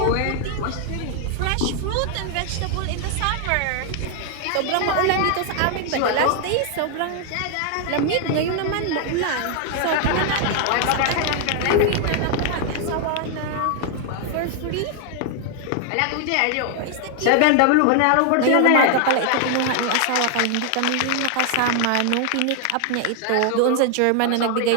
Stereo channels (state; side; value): different; both; correlation 0.00